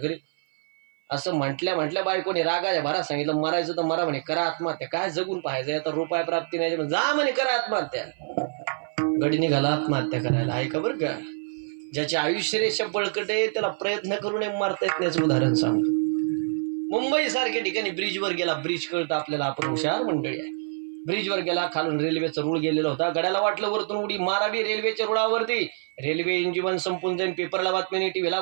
असं म्हटल्या बायकोने रागाच्या भरा सांगितलं, मरायचं तर मरा म्हणे, करा आत्महत्या, काय जगून पाहायचं, आता रुपये प्राप्ती नाही, जा म्हणे करा आत्महत्या. गडी निघाला आत्महत्या करायला. ऐका बरं का, ज्याचे आयुष्य रेषा बळकट आहे त्याला प्रयत्न करून मरता येत नाही. उदाहरण सांगतो. मुंबई सारख्या ठिकाणी ब्रिजवर गेला, ब्रिज कळतं आपल्याला, आपण हुशार मंडळी आहे. ब्रिजवर गेला, खालून रेल्वेचा रूळ गेलेला होता. गड्याला वाटलं वरतून उडी मारावी रेल्वेच्या रुळावरती, रेल्वे इंजिन संपून जाईल, पेपरला बातमी नाही, टीव्हीला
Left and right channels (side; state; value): left; silent; 57 dB below the other